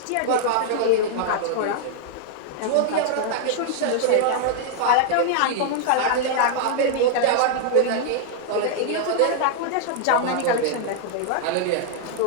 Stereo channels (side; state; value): both; different; correlation -0.01